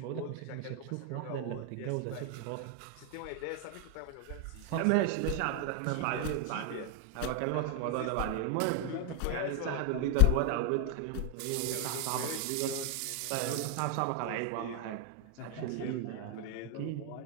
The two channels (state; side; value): different; both; correlation 0.00